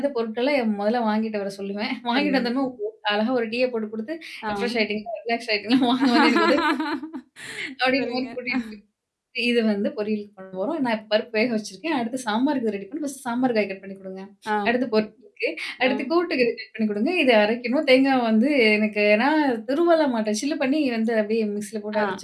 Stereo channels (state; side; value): identical; both; correlation 1.00